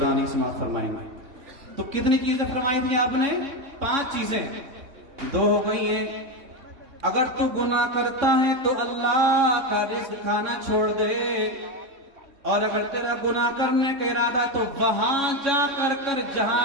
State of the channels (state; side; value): late; left; 3.6 ms